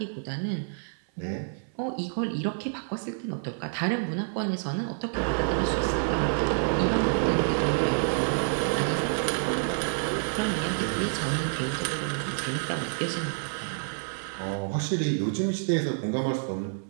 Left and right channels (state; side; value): silent; left; 59 dB below the other